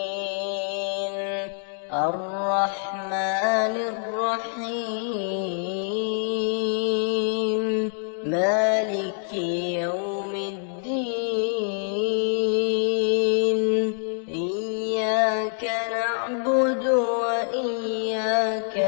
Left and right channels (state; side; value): silent; right; digital silence